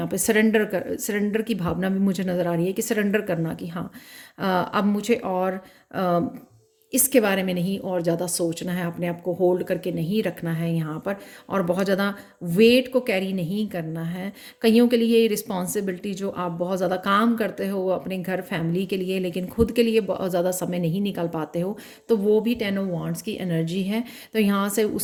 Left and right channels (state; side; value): identical; both; correlation 1.00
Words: पे सरेंडर की भावना भी मुझे नज़र आ रही है, कि सरेंडर करना, कि हाँ अब मुझे और इसके बारे में नहीं और ज़्यादा सोचना है, अपने आप को होल्ड करके नहीं रखना है यहाँ पर, और बहुत ज़्यादा वेट को कैरी नहीं करना है। कईयों के लिए रिस्पॉन्सिबिलिटी, जो आप बहुत ज़्यादा काम करते हो अपने घर फैमिली के लिए, लेकिन खुद के लिए बहुत ज़्यादा समय नहीं निकाल पाते हो, तो वो भी 10 ऑफ वांड्स की एनर्जी है। तो यहाँ से